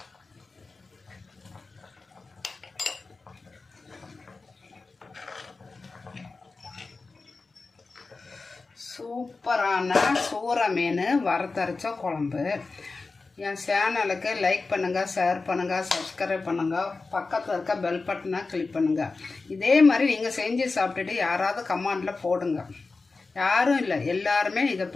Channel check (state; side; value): quieter; right; 3.9 dB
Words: சூப்பரான சூரை மீன் வறுத்தரைச்ச குழம்பு. என் சேனலுக்கு லைக் பண்ணுங்கள், ஷேர் பண்ணுங்கள், சப்ஸ்கிரைப் பண்ணுங்கள், பக்கத்தில் இருக்க பெல் பட்டனை கிளிக் பண்ணுங்கள். இதே மாதிரி நீங்கள் செஞ்சு சாப்பிட்டுட்டு யாராவது கமெண்டில் போடுங்க. யாரும் இல்லை, எல்லாருமே இதை